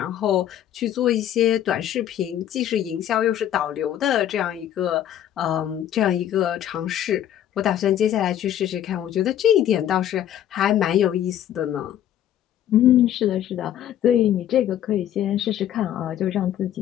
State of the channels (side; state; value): right; quieter; 11.1 dB